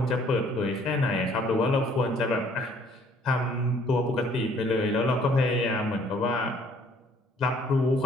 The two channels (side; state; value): both; normal; correlation 0.60